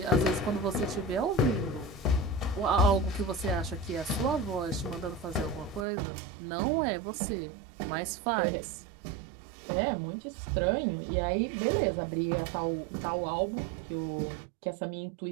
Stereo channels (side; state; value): left; drops out; at 5.9 s